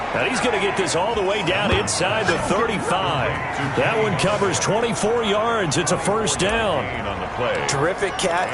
And he's going to get this all the way down inside the 35. That one covers 24 yards. It's a first down. Terrific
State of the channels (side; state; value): both; identical; correlation 1.00